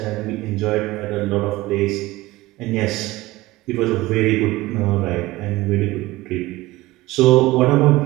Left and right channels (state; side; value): quieter; left; 19.1 dB